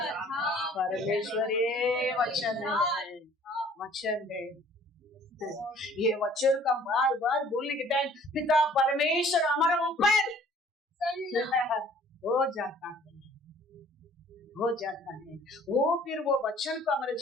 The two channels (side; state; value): both; normal; correlation 0.54